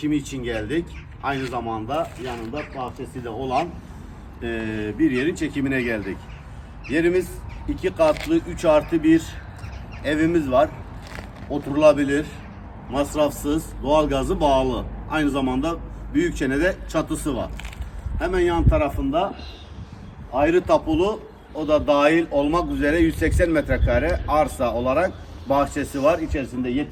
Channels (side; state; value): both; identical; correlation 1.00